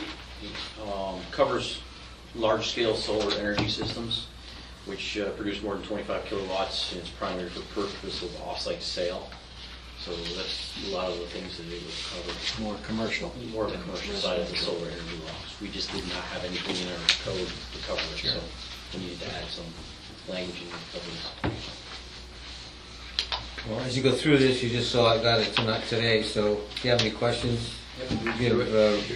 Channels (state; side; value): identical; both; correlation 1.00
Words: covers large-scale solar energy systems, which produce more than 25 kilowatts, and it's primarily for purpose of off-site sale. So that's a lot of the things that it would cover. More commercial. More of the commercial side of the solar energy laws. We just did not have anything in our code to cover it, so we needed to add some language in the code. well, as you go through this, you just saw I got it tonight today, so if you have any questions, give